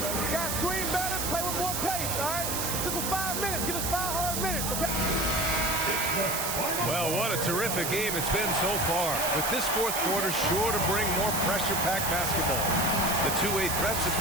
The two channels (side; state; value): right; noise; hiss, 1 dB below the sound